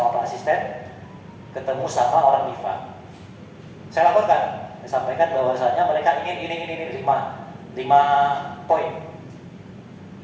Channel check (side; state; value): both; identical; correlation 1.00